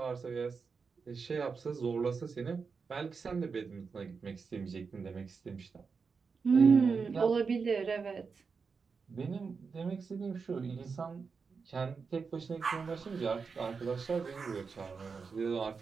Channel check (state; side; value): quieter; left; 5.2 dB